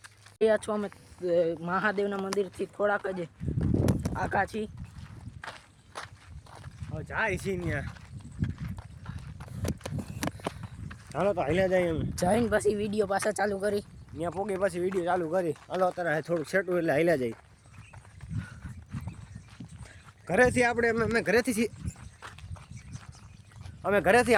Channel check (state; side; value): identical; both; correlation 1.00